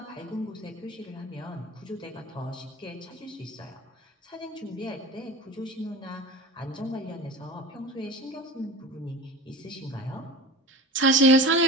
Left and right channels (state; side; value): normal; both; correlation 0.33